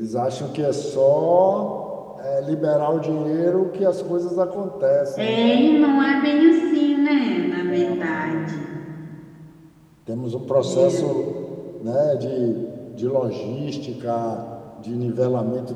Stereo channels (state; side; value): identical; both; correlation 1.00